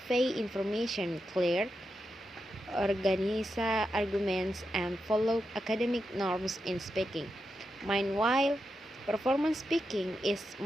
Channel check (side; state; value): both; normal; correlation 0.87